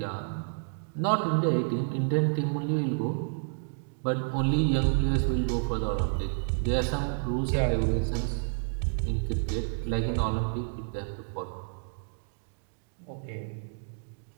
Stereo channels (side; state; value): left; silent; digital silence